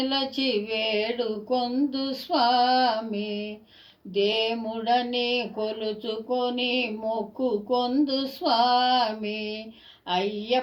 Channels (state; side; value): identical; both; correlation 1.00